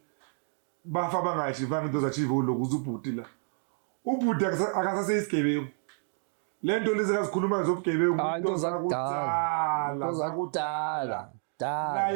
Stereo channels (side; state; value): left; silent; 55 dB below the other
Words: bafa bangayichivanga into zachive lokho ubhudi la ubhudi akasase isigebengu lento lezi akazikhuluma zobugebengu into zakudala